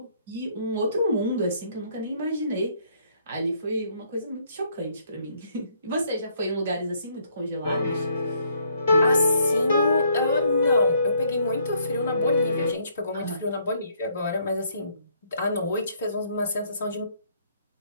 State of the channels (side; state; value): both; inverted; correlation -0.68